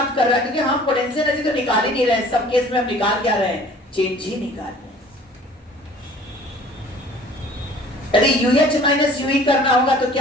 कर रहा है, क्योंकि हम पोटेंशियल एनर्जी तो निकाल ही नहीं रहे, सब केस में हम निकाल क्या रहे हैं? चेंज ही निकाल रहे हैं। यदि UH माइनस UE करना होगा तो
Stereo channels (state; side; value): normal; both; correlation 0.50